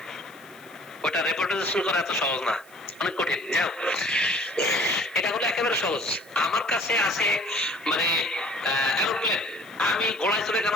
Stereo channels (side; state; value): left; noise; hiss, 26 dB below the sound